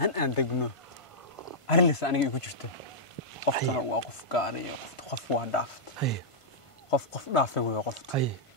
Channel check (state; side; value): late; right; 1.5 ms